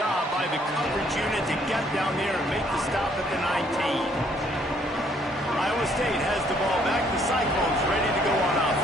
by the coverage unit to get down there and make the stop at the 19. Iowa State has the ball back. The Cyclones ready to go on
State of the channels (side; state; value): both; normal; correlation 0.65